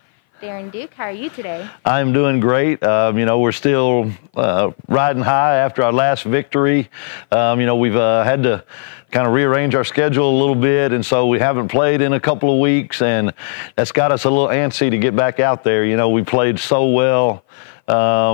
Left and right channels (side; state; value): right; silent; 60 dB below the other